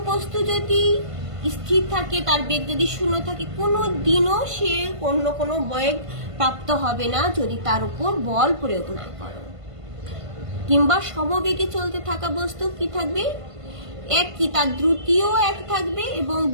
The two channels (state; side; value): late; left; 1.5 ms